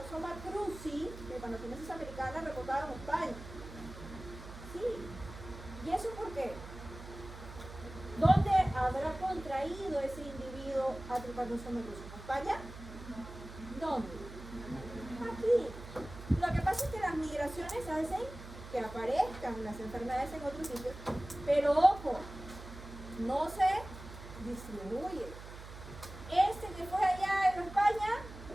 cruzi, Trypanosomiasis americana, reportado en España. Sí. ¿Y eso por qué? ¿Dónde habrá contraído ese individuo a Trypanosoma cruzi? ¿En España? ¿Dónde? Aquí. Lo que pasa es que las migraciones hacen que aparezcan las enfermedades en otros sitios, pero ojo, no se distribuye. Este que fue allá en España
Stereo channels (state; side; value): noise; right; hum, 13 dB below the sound